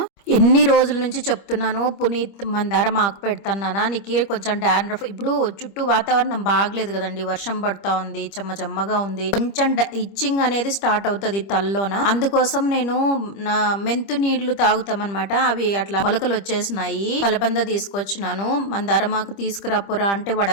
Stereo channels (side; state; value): right; late; 25 ms